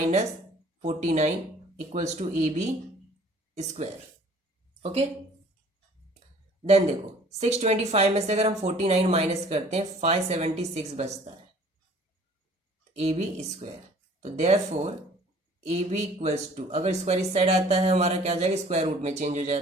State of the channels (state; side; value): normal; both; correlation 0.53